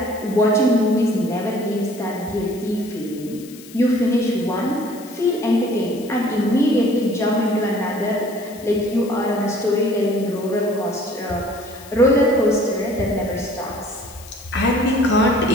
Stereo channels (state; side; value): noise; left; hiss, 20 dB below the sound